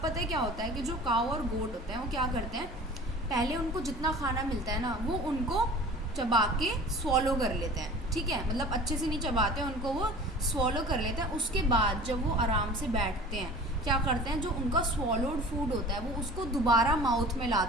पता है क्या होता है कि जो काव और गोट होते हैं वो क्या करते हैं, पहले उनको जितना खाना मिलता है ना वो उनको चबा के स्वॉलो कर लेते हैं. ठीक है, मतलब अच्छे से नहीं चबाते, उनको वो स्वॉलो कर लेते हैं. उसके बाद जब वो आराम से बैठते हैं क्या करते हैं, जो उनका स्वॉलोड फूड होता है वो उसको दोबारा माउथ में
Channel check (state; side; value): normal; both; correlation 0.41